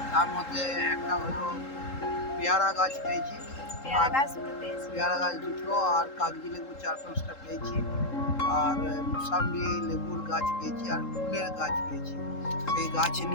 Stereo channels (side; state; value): right; late; 3.7 ms